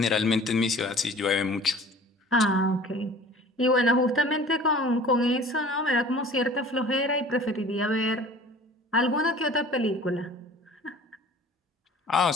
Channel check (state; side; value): normal; both; correlation 0.46